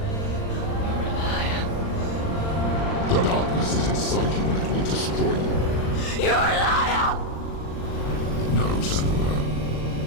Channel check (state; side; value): late; right; 39 ms